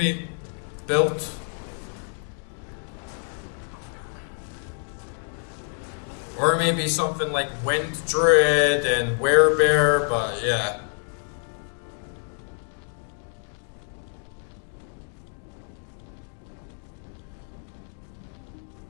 build. Or maybe something like Wind Druid and Werebear, but yeah.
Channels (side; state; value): right; silent; 56 dB below the other